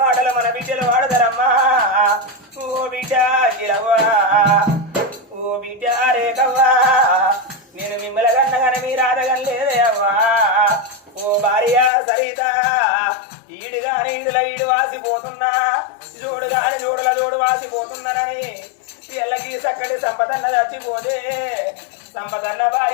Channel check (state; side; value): drops out; right; at 11.9 s